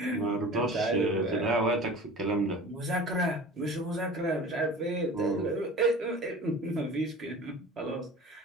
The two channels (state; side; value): normal; both; correlation 0.38